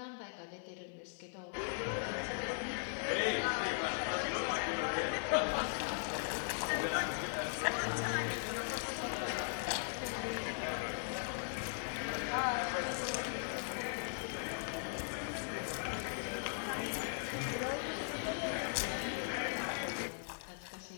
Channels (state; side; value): silent; right; 52 dB below the other